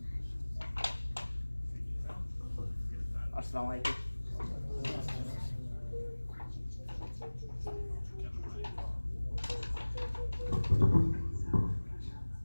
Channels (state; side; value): inverted; both; correlation -1.00